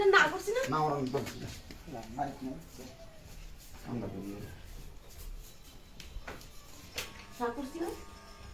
না করছি না না ওরা বলছি না বাড়িতে না আমরা বলি না করছি না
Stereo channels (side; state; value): both; identical; correlation 1.00